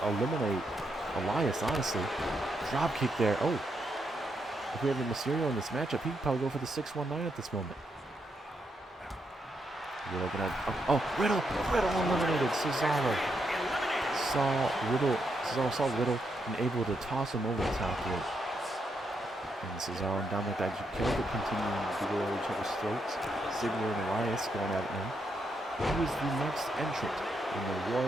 eliminate Elias, honestly. Drop kick there. Oh. If we have a Mysterio in this matchup, he'd probably go for the 619 at this moment. You're looking at... Riddle eliminated Cesaro. Cesaro saw Riddle and able to toss him over the top rope. And Cesaro and Dominic Dijakovic continuing to go at each other's throats. Ziggler and Elias going at it now. Who is the next entrant in the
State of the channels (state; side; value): normal; both; correlation 0.80